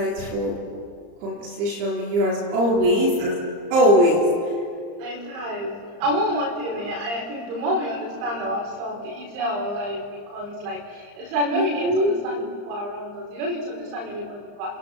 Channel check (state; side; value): late; left; 34 ms